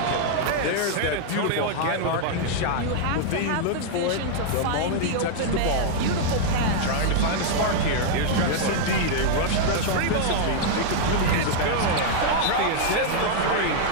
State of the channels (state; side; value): different; both; correlation -0.01